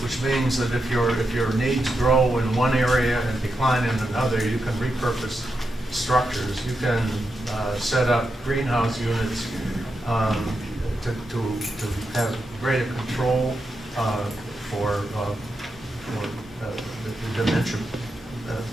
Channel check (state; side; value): normal; both; correlation 0.86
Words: which means that if your needs grow in one area and decline in another, you can repurpose structures. You can set up greenhouse units to have greater control for the dementia